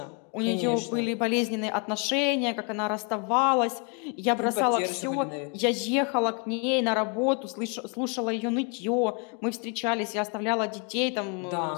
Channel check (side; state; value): right; quieter; 35.9 dB